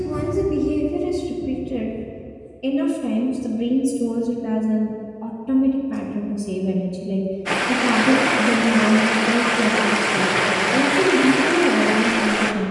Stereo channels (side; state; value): both; identical; correlation 1.00